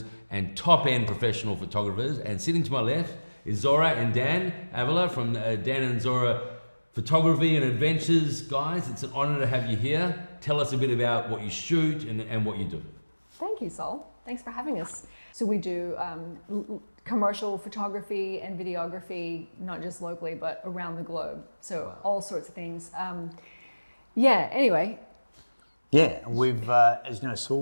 and top-end professional photographers. And sitting to my left is Zora and Dan Avila from Dan and Zora Photography and Adventures. Guys, it's an honor to have you here. Tell us a bit about what you shoot and what you do. Thank you, Sol. Thanks for having us. So we do commercial photography and videography, not just locally, but around the globe. So all sorts of things. Anyway. Yeah, we've, as you know, Saul,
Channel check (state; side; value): inverted; both; correlation -1.00